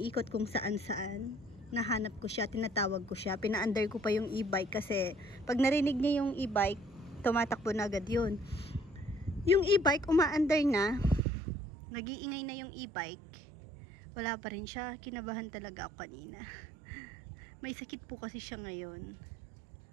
kung saan-saan. Nahanap ko siya, tinatawag ko siya. Pina-under ko pa yung e-bike kasi pag narinig niya yung e-bike, tumatakbo na agad yun. Yung e-bike, uma-under na. Nag-iingay na yung e-bike. Wala pa rin siya. Kinabahan talaga ako kanina. May sakit po kasi siya ngayon.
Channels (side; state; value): left; drops out; at 11.2 s